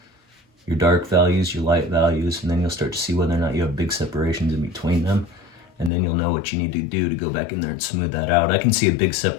your dark values, your light values, and then you'll start to see whether or not you have big separations in between them, and then you'll know what you need to do to go back in there and smooth that out. I can see a big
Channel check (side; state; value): right; drops out; at 5.9 s